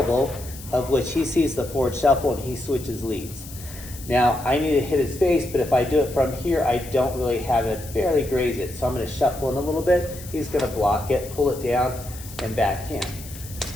of which he sees the forward shuffle and he switches leads. Now, I need to hit his face, but if I do it from here, I don't really have it, barely graze it, so I'm going to shuffle in a little bit. He's going to block it, pull it down, and backhand.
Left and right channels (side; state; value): left; noise; hiss, 16 dB below the sound